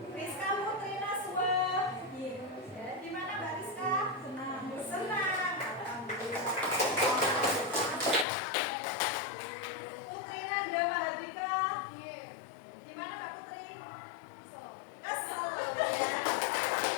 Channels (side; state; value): right; drops out; at 8.2 s